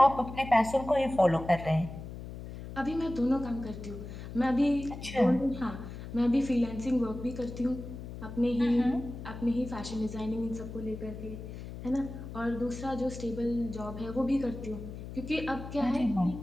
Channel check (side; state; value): left; noise; hum, 10 dB below the sound